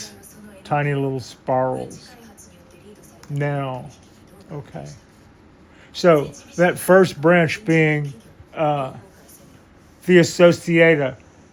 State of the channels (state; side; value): identical; both; correlation 1.00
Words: tiny little spirals. Now, okay. So that first branch being the Associata,